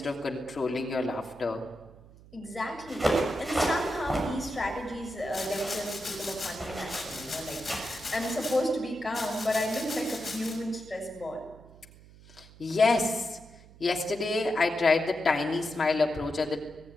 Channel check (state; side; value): noise; right; hum, 22 dB below the sound